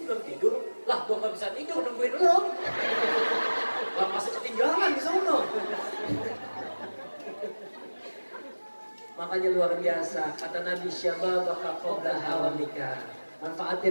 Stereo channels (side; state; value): both; inverted; correlation -1.00